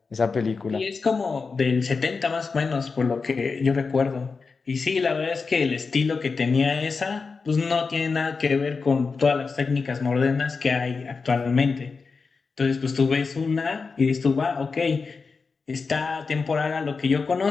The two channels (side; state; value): right; quieter; 4.7 dB